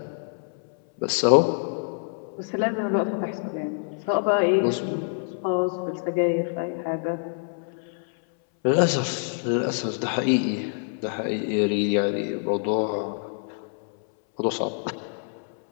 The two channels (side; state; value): right; silent; 61 dB below the other